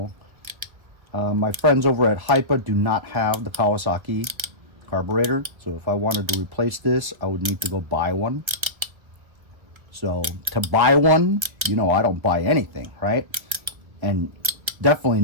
My friends over at HIPA do not have the Kawasaki carburetor, so if I wanted to replace this, I would need to go buy one. So to buy one, you know, I don't buy anything, right? And definitely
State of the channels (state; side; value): late; left; 1.5 ms